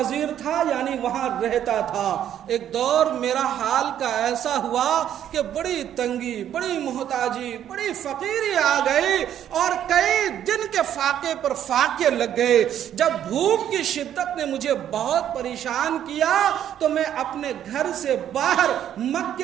تھا، یعنی وہاں رہتا تھا۔ ایک دور میرا حال کا ایسا ہوا کہ بڑی تنگی، بڑی محتاجی، بڑی فقیری آ گئی اور کئی دن کے فاقے پر فاقے لگ گئے۔ جب بھوک کی شدت نے مجھے بہت پریشان کیا تو میں اپنے گھر سے باہر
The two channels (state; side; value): quieter; left; 10.4 dB